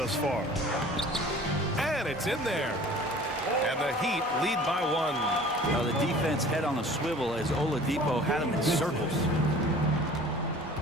far. And it's in there. And the Heat lead by 1. Now the defense head on a swivel as Oladipo had him in circles.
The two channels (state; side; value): normal; both; correlation 0.46